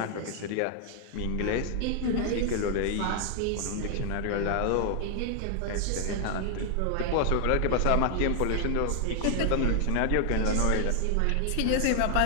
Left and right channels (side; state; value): both; different; correlation 0.00